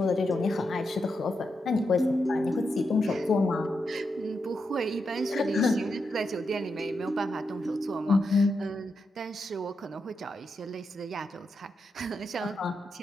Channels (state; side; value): normal; both; correlation 0.85